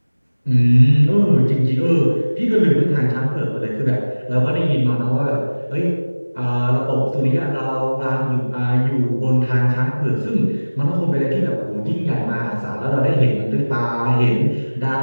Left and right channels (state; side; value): inverted; both; correlation -1.00